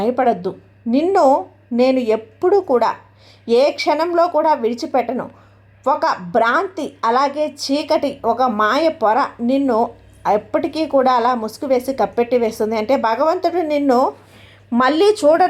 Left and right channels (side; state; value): both; identical; correlation 1.00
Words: నిన్ను నేను ఎప్పుడూ కూడా ఏ క్షణంలో కూడా విడిచిపెట్టను. ఒక భ్రాంతి, అలాగే చీకటి, ఒక మాయ పొర నిన్ను ఎప్పటికీ కూడా అలా ముసుగు వేసి కప్పెట్టి వేస్తుంది. అంటే భగవంతుడు నిన్ను మళ్ళీ